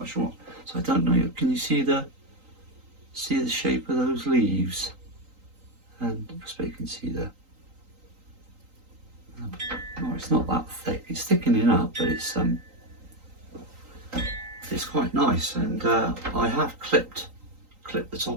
So I don't know. Can you see the shape of those leaves? And I suppose you can see no, it's not that thick. It's thickening up, but it's quite nice. And I have clipped the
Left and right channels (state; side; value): late; left; 3.9 ms